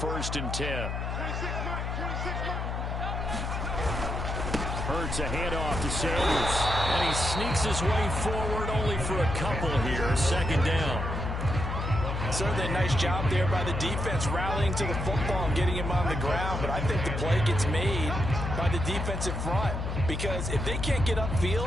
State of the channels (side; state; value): left; noise; hum, 3 dB below the sound